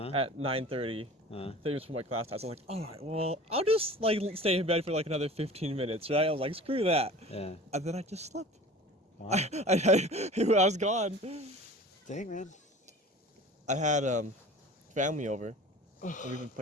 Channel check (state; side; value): normal; both; correlation 0.41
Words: at 9:30. 30 minutes for my class time. So I was like, all right, well, I'll just like stay in bed for like another 15 minutes, right? I was like, screw that. Yeah. And then I just slept. Wow. I was gone. Dang, man. I had family over. And we've been